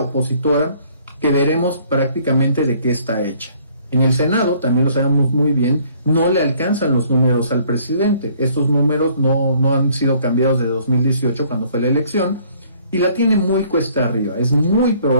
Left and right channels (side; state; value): both; inverted; correlation -0.60